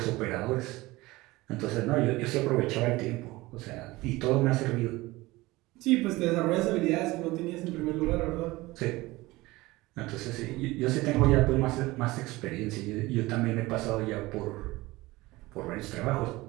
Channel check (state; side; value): quieter; left; 20.1 dB